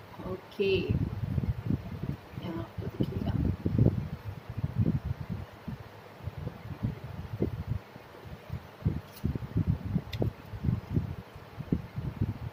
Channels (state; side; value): identical; both; correlation 1.00